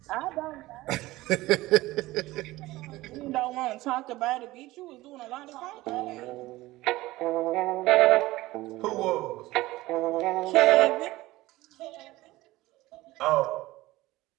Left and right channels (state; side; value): quieter; left; 18.3 dB